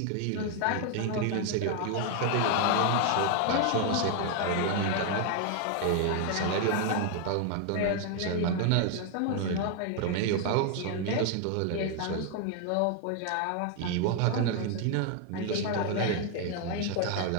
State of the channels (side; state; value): both; different; correlation 0.00